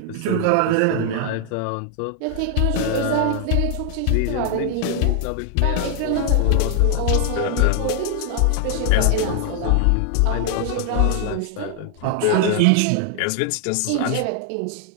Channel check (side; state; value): both; different; correlation 0.00